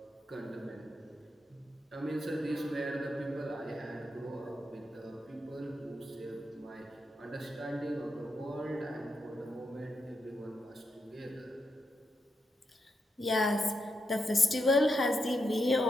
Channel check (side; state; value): both; normal; correlation 0.84